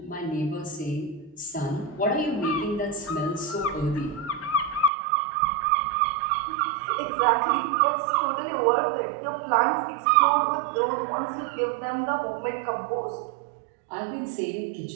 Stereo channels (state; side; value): drops out; left; at 4.9 s